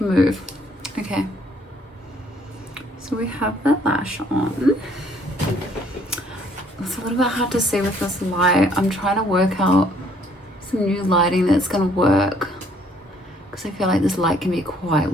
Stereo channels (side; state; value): both; normal; correlation 0.63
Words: move. Okay. So we have that lash on. It's a little bit hard to see with this light. I'm trying to work out some new lighting that's going to work, because I feel like this light can be quite